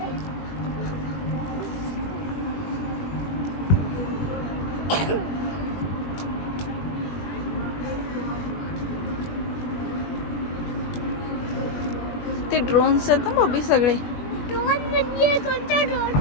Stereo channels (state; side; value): late; right; 21 ms